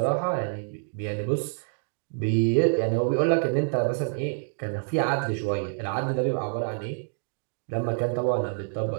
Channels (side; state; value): left; silent; digital silence